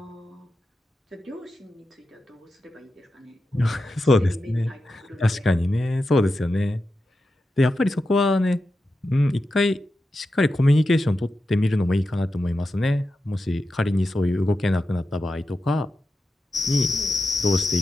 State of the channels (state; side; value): normal; both; correlation 0.90